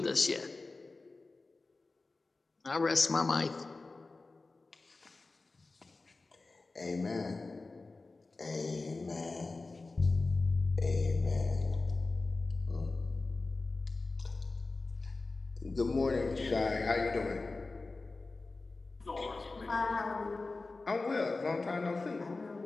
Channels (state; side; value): quieter; right; 3.5 dB